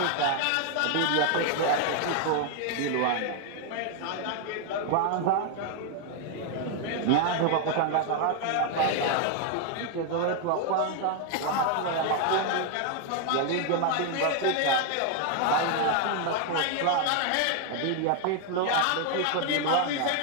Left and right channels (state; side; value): different; both; correlation 0.00